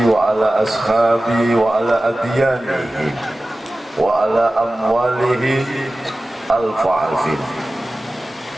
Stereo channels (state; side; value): normal; both; correlation 0.96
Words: wa ala ashabi wa ala adyanihi wa ala amwalihi alfa'afin.